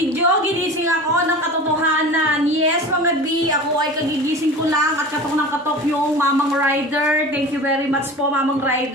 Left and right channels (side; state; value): both; normal; correlation 0.35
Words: ginising ako ng katotohanan. Yes mga B, ako ay kagigising ko lang at katok ng katok yung Mamang Rider. Thank you very much po Mamang